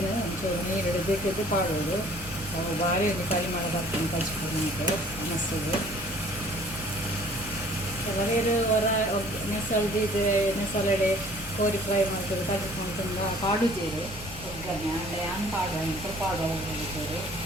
ಒಂಚೂರು ನೀರು ಬೇಕಿದ್ದು ಪಾಡೋದು ಅವು ಭಾರಿ ಒಂದು ಪರಿಮಳ ಬರ್ತದೆ ಕಚ್ಕೊಂಡು ಮನಸ್ಸಿಗೆ ಕೆಲವರು ಹೊರ ನೆಸಲ್ದು ಇದು ನೆಸಲೆಡೆ ಕೋರಿ ಫ್ರೈ ಮಾಡ್ತಾರೆ ಕಚ್ಕೊಂಡು ತುಂಬ ಪಾಡುತ್ತೀರಿ ಒಗ್ಗರಣೆ ಅಂದರೆ ಹಂಗೆ ಪಾಡುವ ಅಂತ ಪಾಡುವ ಹೋಗ್ತಾರೆ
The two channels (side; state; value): left; noise; rumble, 16 dB below the sound